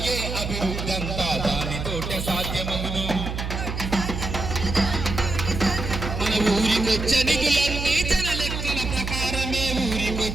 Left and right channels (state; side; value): noise; right; hum, 5 dB below the sound